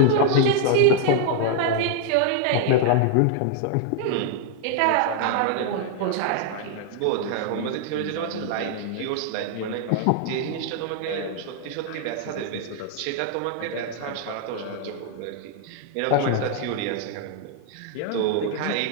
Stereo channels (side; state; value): both; different; correlation 0.00